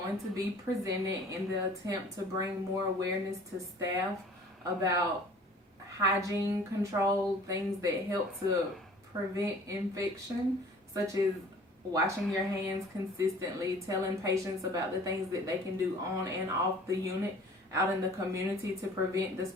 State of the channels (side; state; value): both; normal; correlation 0.49